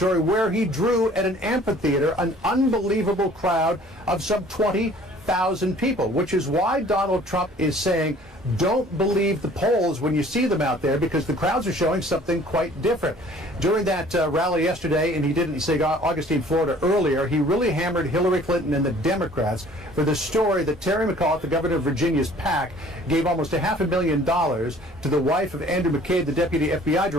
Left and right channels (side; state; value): both; normal; correlation 0.53